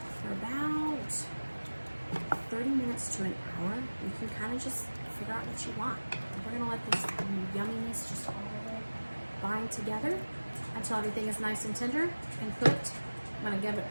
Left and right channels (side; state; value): both; inverted; correlation -1.00